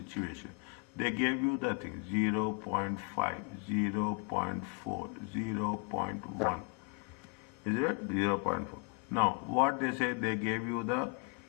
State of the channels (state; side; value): quieter; right; 30.2 dB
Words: They gave you the thing 0.5, 0.4, 0.1. Is it? 0.4. Now, what they say, they gave you the